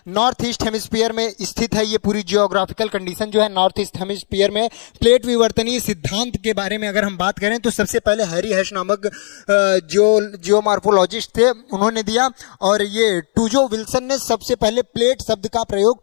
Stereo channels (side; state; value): right; silent; 68 dB below the other